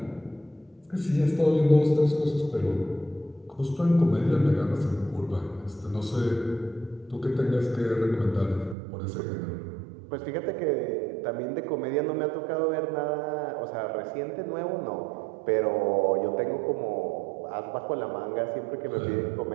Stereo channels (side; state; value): left; drops out; at 8.8 s